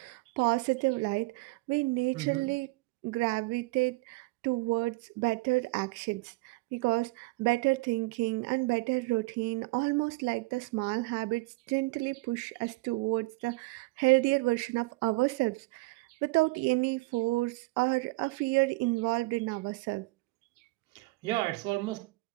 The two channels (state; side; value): quieter; left; 23.7 dB